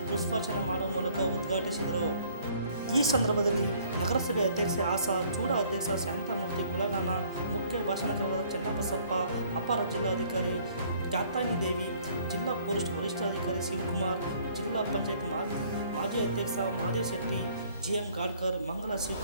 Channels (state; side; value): inverted; both; correlation -0.59